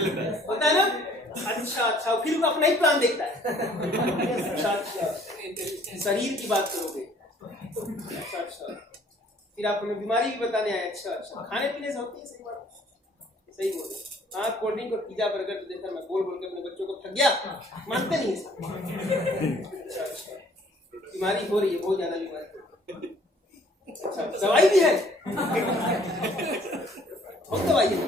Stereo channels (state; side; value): normal; both; correlation 0.58